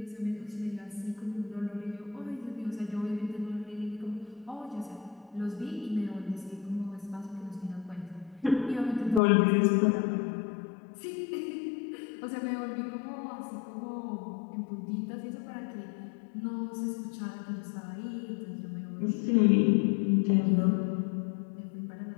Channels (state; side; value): drops out; right; at 9.2 s